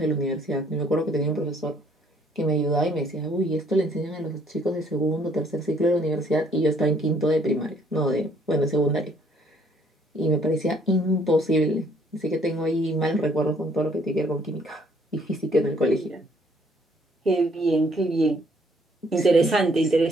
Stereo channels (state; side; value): normal; both; correlation 0.64